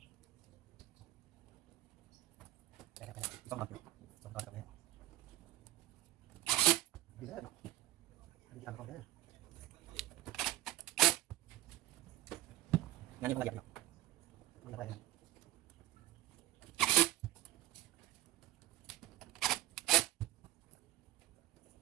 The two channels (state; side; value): quieter; left; 16.1 dB